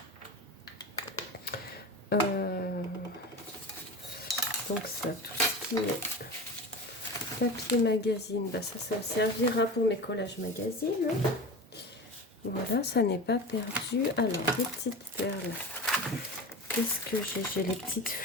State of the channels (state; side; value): normal; both; correlation 0.29